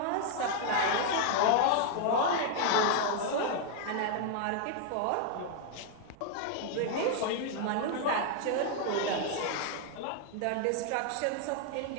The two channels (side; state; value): both; different; correlation 0.00